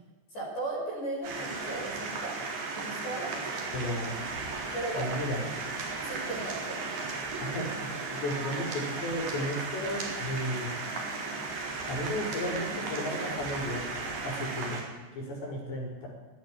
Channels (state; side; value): late; right; 14 ms